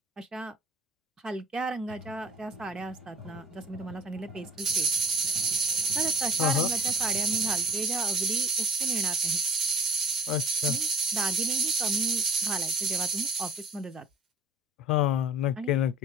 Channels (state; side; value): normal; both; correlation 0.46